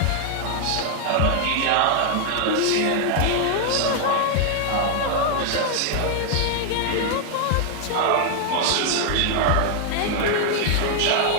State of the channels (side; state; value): both; different; correlation 0.00